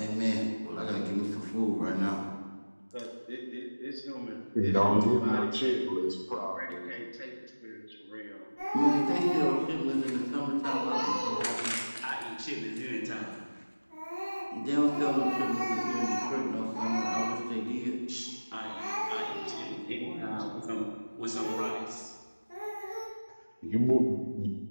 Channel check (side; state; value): both; inverted; correlation -1.00